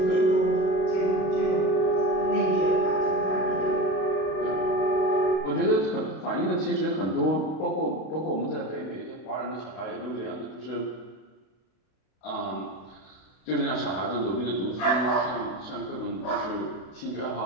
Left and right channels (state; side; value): late; right; 32 ms